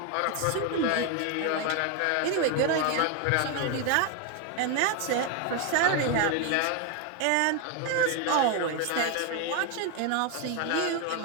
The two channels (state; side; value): different; both; correlation 0.01